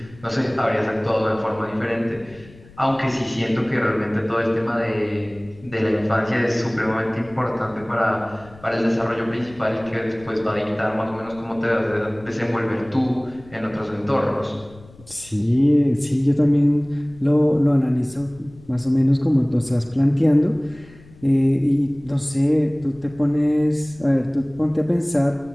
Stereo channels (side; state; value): left; noise; rumble, 23 dB below the sound